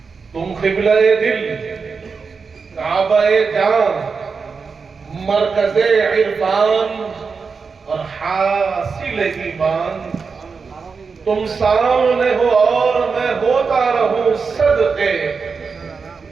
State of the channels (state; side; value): quieter; left; 5.1 dB